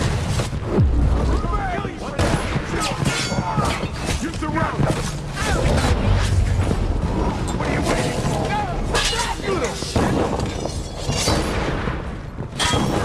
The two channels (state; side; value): identical; both; correlation 1.00